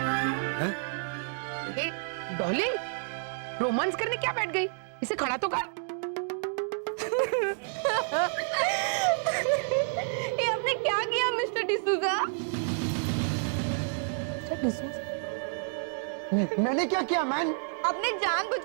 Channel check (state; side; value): silent; left; digital silence